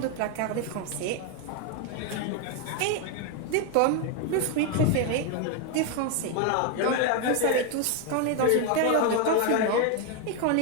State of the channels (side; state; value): both; different; correlation 0.01